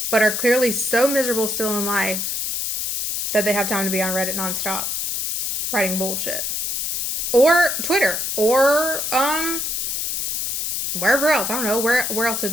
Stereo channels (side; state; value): left; noise; hiss, 1 dB below the sound